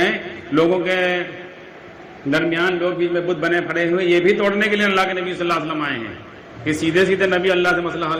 لوگوں کے درمیان، لوگ بیچ میں بت بنے پڑے ہوئے، یہ بھی توڑنے کے لیے اللہ کے نبی صلی اللہ علیہ وسلم آئے ہیں کہ سیدھے سیدھے نبی اللہ سے مسئلہ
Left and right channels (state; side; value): identical; both; correlation 1.00